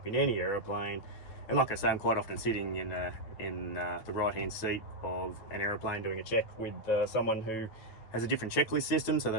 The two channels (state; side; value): late; right; 9.0 ms